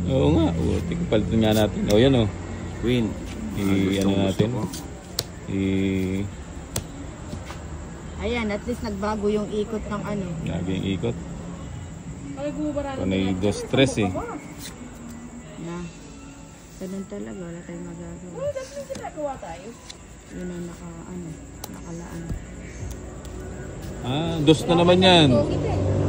Oo nga, putik. Palitan nga natin. O, yan o. Queen. Ano natin? Ayan, at least nagbago yung ikot ng ano. Lagi yung ikot. Ay, gumabaralo. Panay 2-3 eh. Na. Ganun talaga, wala tayong magagawa. Dati yung ginagawa tayo. Yun ang nakalaan. Ah, 2 na naman yan.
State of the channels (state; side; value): identical; both; correlation 1.00